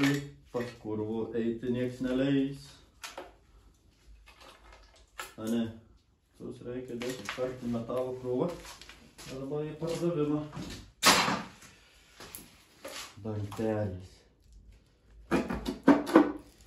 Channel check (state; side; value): identical; both; correlation 1.00